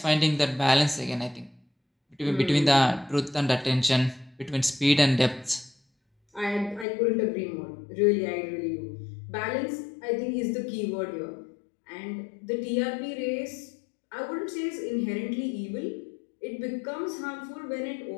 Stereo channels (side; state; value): right; drops out; at 6.9 s